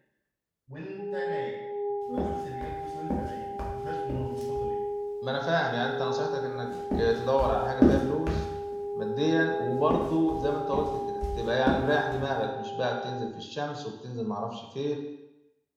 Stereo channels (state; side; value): identical; both; correlation 1.00